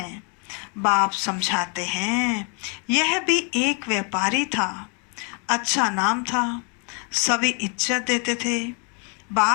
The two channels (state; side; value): quieter; right; 36.9 dB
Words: बाप समझाते हैं, यह भी एक व्यापारी था, अच्छा नाम था, सभी इज्जत देते थे।